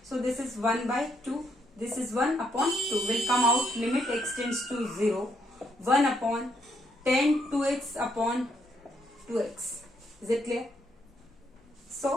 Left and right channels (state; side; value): normal; both; correlation 0.74